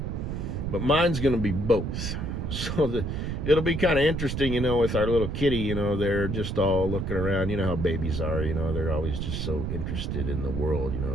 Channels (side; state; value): right; noise; rumble, 3 dB below the sound